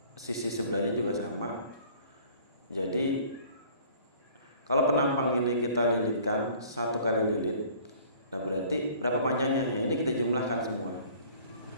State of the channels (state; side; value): inverted; both; correlation -0.52